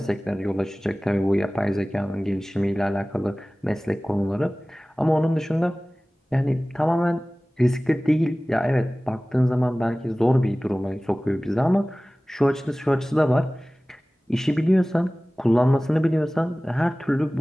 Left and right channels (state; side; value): normal; both; correlation 0.98